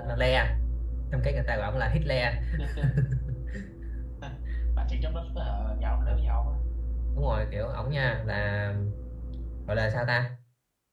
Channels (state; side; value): identical; both; correlation 1.00